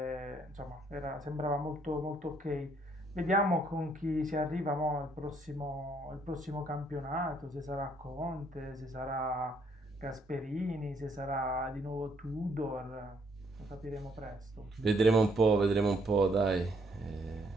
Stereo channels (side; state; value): both; normal; correlation 0.69